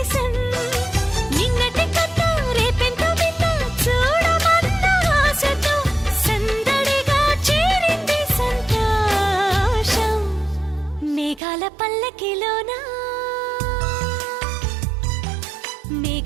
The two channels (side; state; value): left; drops out; at 11.4 s